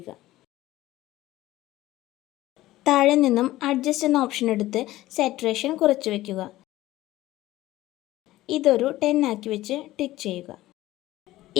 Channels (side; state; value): right; quieter; 16.2 dB